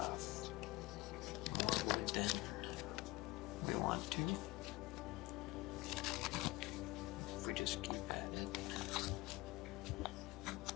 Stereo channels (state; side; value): quieter; right; 20.8 dB